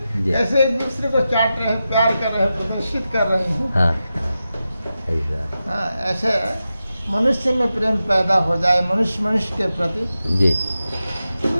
ऐसे एक दूसरे को चाट रहे हैं, प्यार कर रहे हैं, प्रदर्शित कर रहे हैं। हाँ ऐसा। हाँ, ऐसे मनुष्य में प्रेम पैदा हो जाए, मनुष्य मनुष्य के प्रति, जी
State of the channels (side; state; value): both; inverted; correlation -0.91